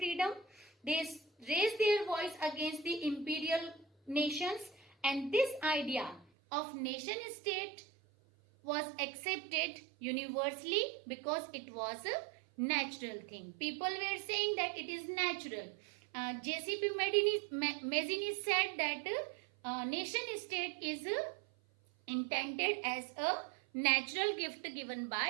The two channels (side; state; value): left; drops out; at 6.2 s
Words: They raised their voice against the imperial nations, and this idea of nation state was accepted universally because it was a natural thing. People were saying that it is natural. J.C.P. Mazzini said that nation state is intended as a natural gift given